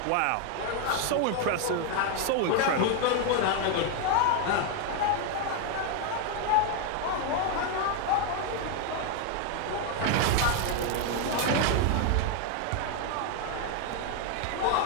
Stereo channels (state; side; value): different; both; correlation 0.01